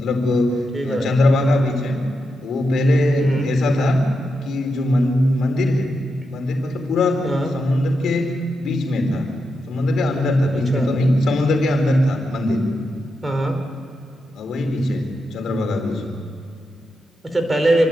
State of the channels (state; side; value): normal; both; correlation 0.86